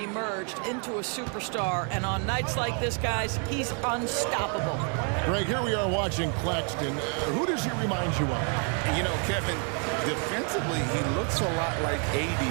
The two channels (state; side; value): quieter; left; 39.6 dB